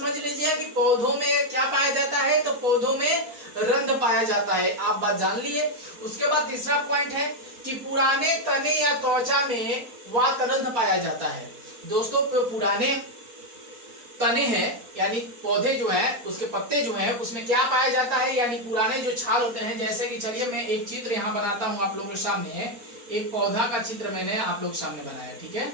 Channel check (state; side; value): late; left; 4.3 ms